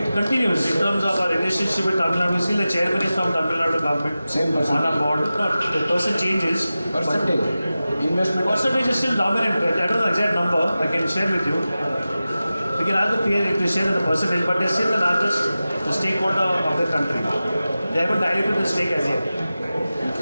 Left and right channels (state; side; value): inverted; both; correlation -0.95